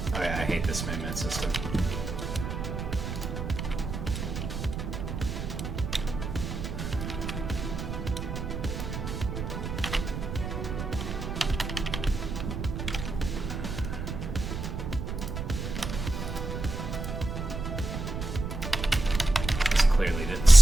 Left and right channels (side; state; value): right; noise; rumble, 5 dB below the sound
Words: Oh yeah, I hate this movement system. Clearly didn't